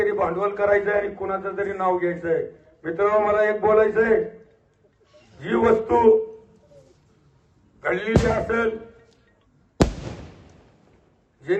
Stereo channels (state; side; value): identical; both; correlation 1.00